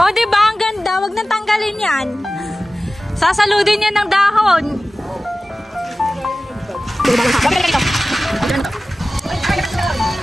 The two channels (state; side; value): normal; both; correlation 0.96